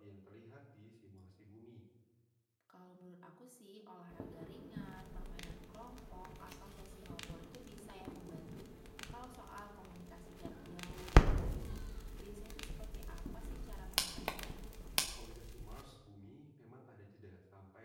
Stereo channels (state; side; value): identical; both; correlation 1.00